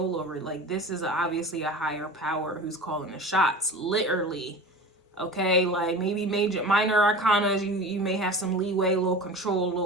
over. Like, this is obviously a higher power who's calling the shots, literally. Okay, like maybe minor arcanas, you may have some leeway, a little control, a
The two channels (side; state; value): both; normal; correlation 0.35